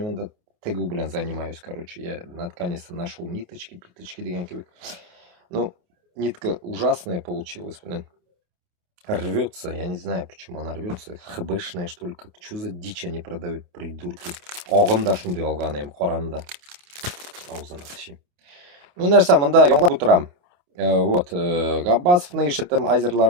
мында тігу блин занимаюсь, короче. Я наконец-то нашел ниточки, питочки деген кебек. Ну, нитка ужасная получилась, блин. Рвется, я не знаю, почему она рвется. ХБшная, что ли, как, что за дичь они продают, придурки. Оғында шундай алған ем, қоранда. Аузына тышим. Ну, нәрсе, мында яңлап отырам. Вот, Габбасов наишетем азерлар,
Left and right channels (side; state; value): left; late; 28 ms